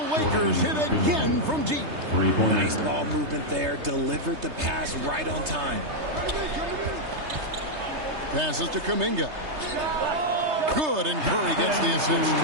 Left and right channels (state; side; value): late; left; 3.3 ms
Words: hit again from deep. Nice ball movement there. Delivered the pass right on time. Passes to Kuminga. Good, and Curry gets the assist.